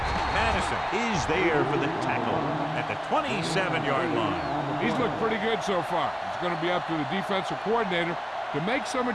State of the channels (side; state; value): both; identical; correlation 1.00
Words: Madison is there for the tackle at the 27-yard line. He's looked pretty good so far. It's going to be up to the defensive coordinator to make some